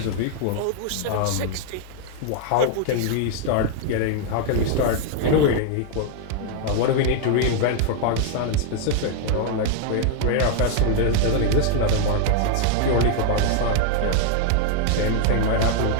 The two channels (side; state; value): both; different; correlation 0.00